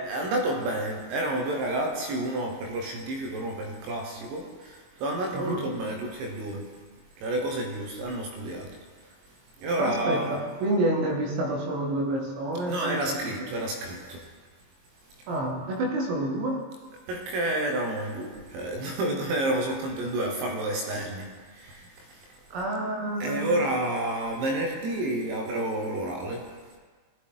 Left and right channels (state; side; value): late; left; 22 ms